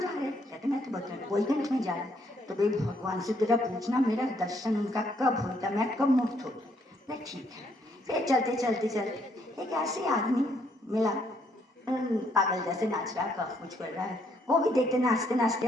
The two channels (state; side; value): normal; both; correlation 0.70